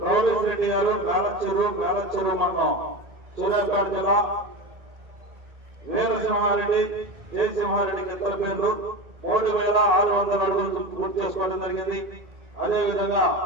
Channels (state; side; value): late; left; 1.8 ms